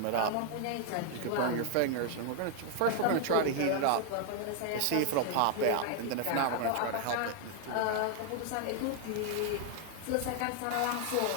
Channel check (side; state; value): both; different; correlation 0.00